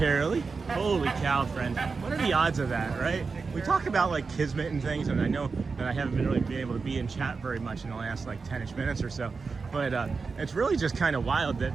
Holy cow, friend. What are the odds of that, right? We talk about like kismet and things, and I know that I haven't really been able to be in chat very much in the last like 10-ish minutes or so, but it's really just kind of wild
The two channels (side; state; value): left; quieter; 4.7 dB